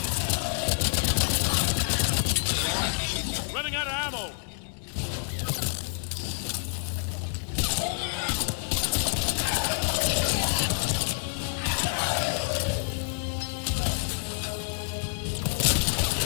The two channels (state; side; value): silent; right; digital silence